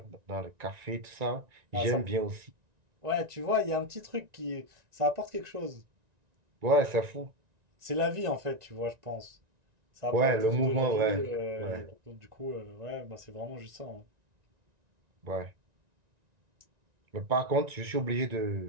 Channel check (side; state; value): left; late; 1.9 ms